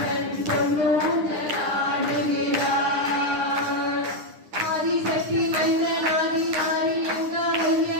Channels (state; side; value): late; left; 9.8 ms